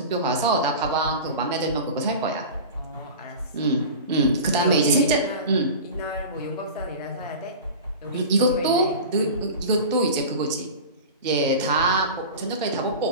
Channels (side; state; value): both; inverted; correlation -0.32